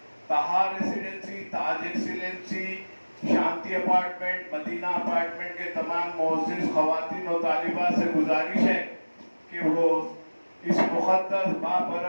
تہا ریسیڈنسی، تاج ایکسیلنسی، شانتی اپارٹمنٹ، مدینہ اپارٹمنٹ کے تمام معزز خواتین و طالبات سے گزارش ہے کہ وہ اس مقدس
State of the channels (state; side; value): inverted; both; correlation -1.00